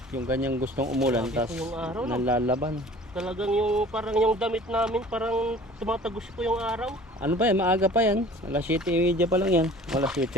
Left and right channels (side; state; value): both; normal; correlation 0.46